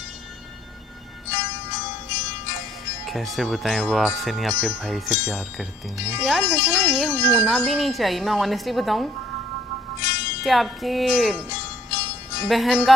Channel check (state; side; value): normal; both; correlation 0.63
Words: कैसे बताएं, वो आपसे नहीं आपके भाई से प्यार करती हैं। यार वैसे ना ये होना भी नहीं चाहिए। मैं ऑनेस्टली बताऊं कि आपकी बहन